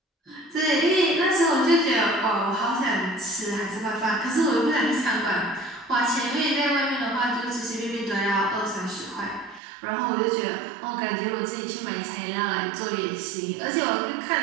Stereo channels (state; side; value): drops out; left; at 9.6 s